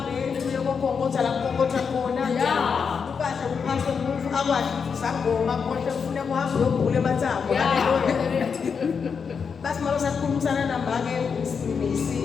uyokonkotha la konkotha khona. Ukahle uphase umufu akwadi ukuthi sangoma konke ufuna kuhambe uyogula emathambo. Hallelujah. Basi malo sakhulumisana nambake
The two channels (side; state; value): right; quieter; 6.1 dB